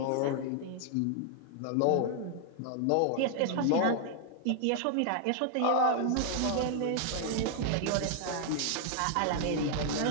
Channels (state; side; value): different; both; correlation 0.00